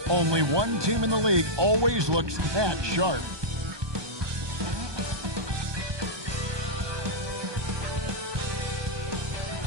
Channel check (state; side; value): late; left; 1.2 ms